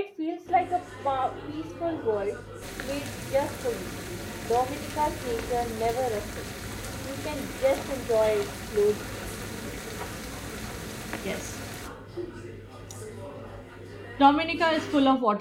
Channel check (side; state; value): both; identical; correlation 1.00